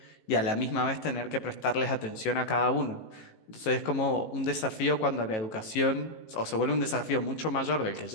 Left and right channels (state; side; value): late; right; 18 ms